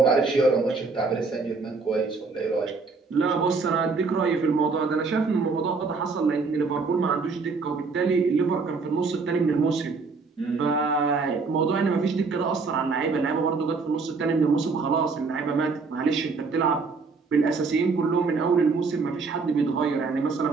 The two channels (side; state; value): left; quieter; 4.4 dB